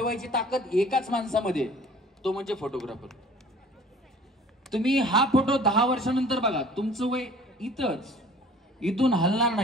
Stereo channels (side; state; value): both; normal; correlation 0.49